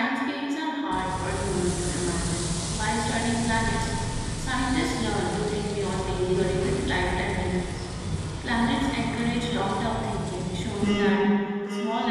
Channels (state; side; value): identical; both; correlation 1.00